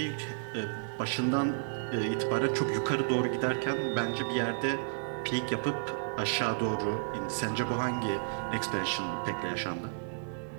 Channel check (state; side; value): silent; left; 56 dB below the other